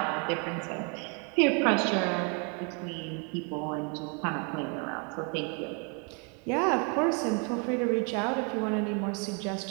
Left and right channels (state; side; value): quieter; left; 36.1 dB